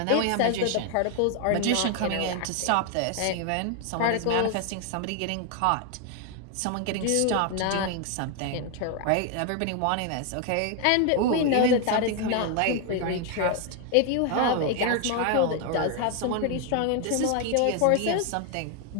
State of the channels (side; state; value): both; different; correlation 0.01